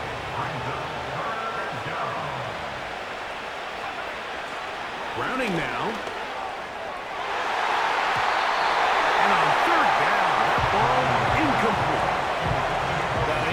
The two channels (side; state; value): both; identical; correlation 1.00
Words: Browning now. And on third down, that ball incomplete. Well, we